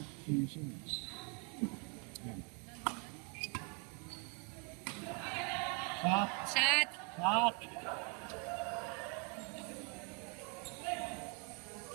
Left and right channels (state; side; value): quieter; left; 36.2 dB